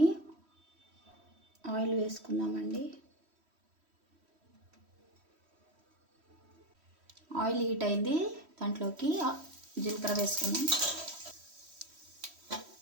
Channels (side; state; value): left; late; 3.1 ms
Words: ఆయిల్ వేసుకుందామండి. ఆయిల్ హీట్ అయింది, దాంట్లోకి జీలకర్ర వేసుకున్నాం,